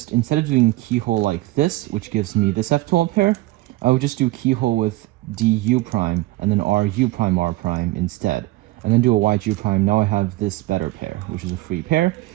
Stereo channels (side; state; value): left; quieter; 19.1 dB